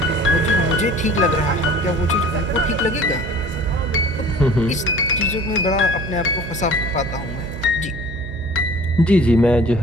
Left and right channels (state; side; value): noise; right; hum, 9 dB below the sound